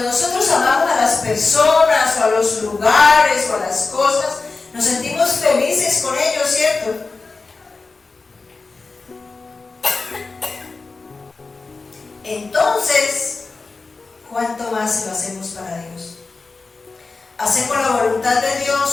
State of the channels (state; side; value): quieter; right; 4.0 dB